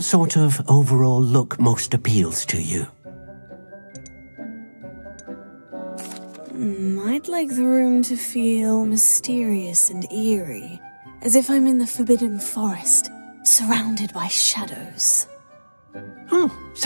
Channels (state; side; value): inverted; both; correlation -1.00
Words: sort of overall look most appeals to you? I'd I'd like the room to feel mysterious and eerie, as if I'm in the Forbidden Forest, surrounded by shadows. Oh,